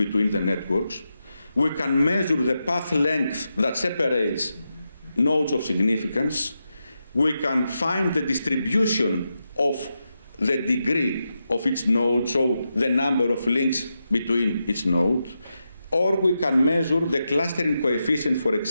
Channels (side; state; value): both; inverted; correlation -0.88